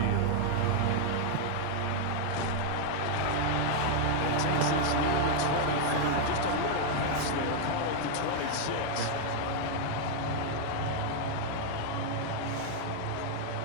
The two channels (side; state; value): both; different; correlation 0.00